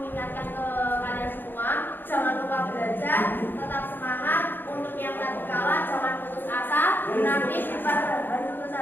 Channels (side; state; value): right; late; 0.095 ms